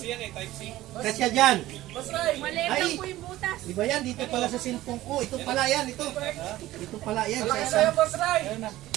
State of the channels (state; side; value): quieter; left; 15.9 dB